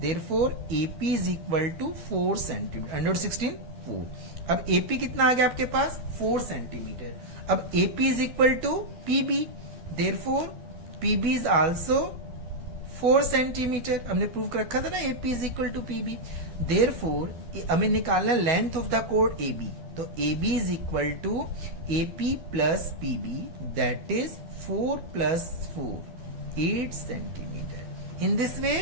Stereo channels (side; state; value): left; late; 12 ms